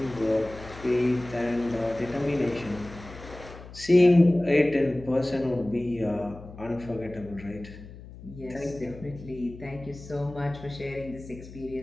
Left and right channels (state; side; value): noise; left; hum, 16 dB below the sound